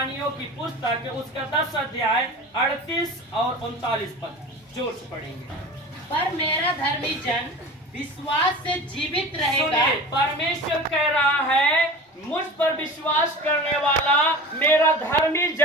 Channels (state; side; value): normal; both; correlation 0.35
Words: की पुस्तक उसका 10 अध्याय 38 और 39 पद जोर से पढ़ेंगे। पर मेरा धर्मी जन विश्वास से जीवित रहेगा। परमेश्वर कह रहा है मुझ पर विश्वास करने वाला मेरा धर्मी